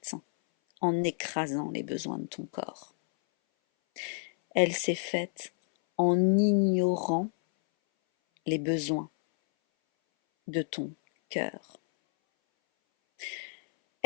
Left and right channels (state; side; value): silent; right; 58 dB below the other